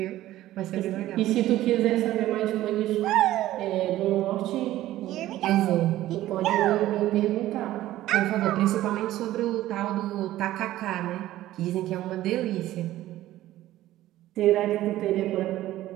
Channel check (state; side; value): quieter; left; 14.7 dB